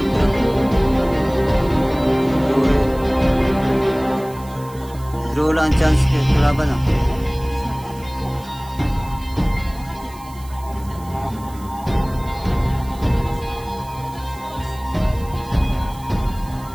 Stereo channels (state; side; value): noise; right; hiss, 22 dB below the sound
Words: Draw lang chance ke kalaban ah.